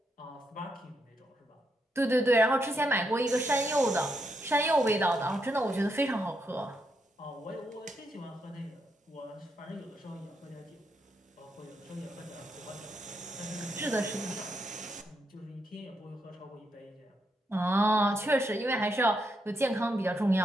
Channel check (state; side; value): normal; both; correlation 0.80